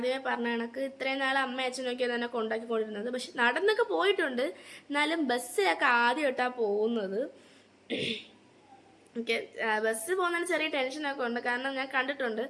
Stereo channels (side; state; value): both; identical; correlation 1.00